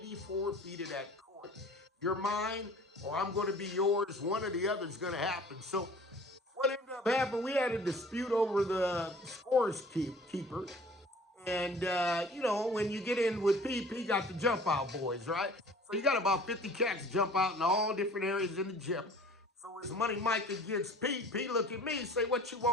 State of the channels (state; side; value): normal; both; correlation 0.48